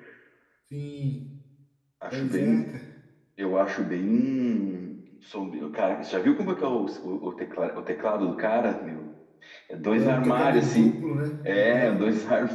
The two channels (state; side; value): identical; both; correlation 1.00